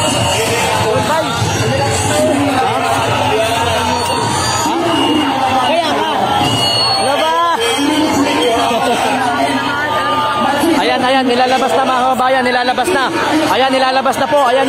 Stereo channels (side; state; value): both; identical; correlation 1.00